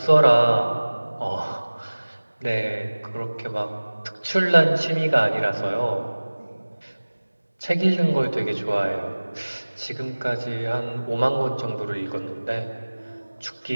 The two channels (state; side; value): inverted; both; correlation -1.00